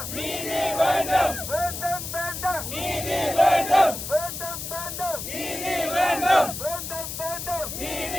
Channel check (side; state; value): left; noise; hiss, 7 dB below the sound